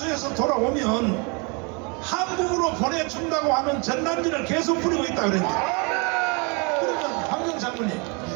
돌아오면 한국으로 보내준다고 하는 전단지를 계속 뿌리고 있다 그랬는데, 그러면 황정 장군님,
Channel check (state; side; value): quieter; left; 31.9 dB